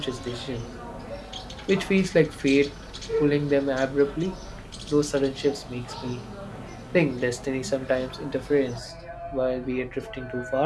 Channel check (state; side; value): identical; both; correlation 1.00